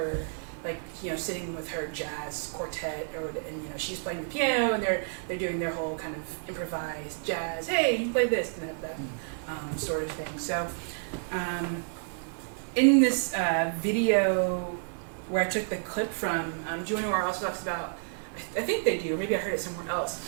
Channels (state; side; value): silent; left; digital silence